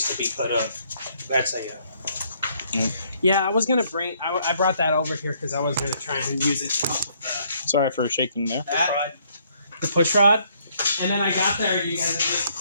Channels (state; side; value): inverted; both; correlation -0.67